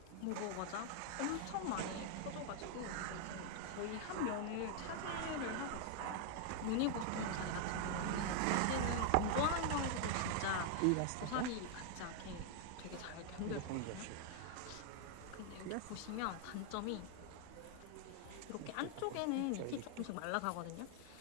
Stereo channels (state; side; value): different; both; correlation 0.00